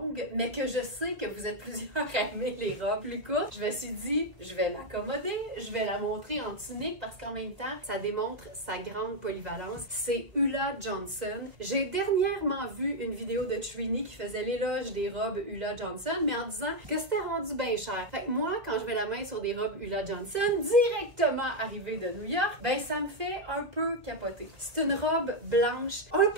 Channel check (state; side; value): late; left; 1.7 ms